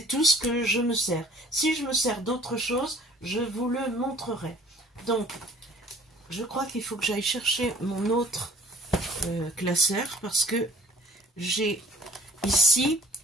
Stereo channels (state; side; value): normal; both; correlation 0.52